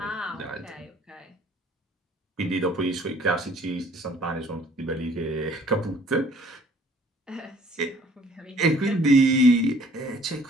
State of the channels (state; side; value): normal; both; correlation 0.56